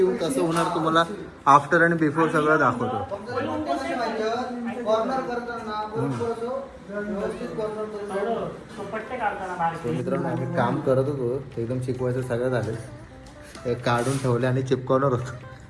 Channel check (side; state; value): both; identical; correlation 1.00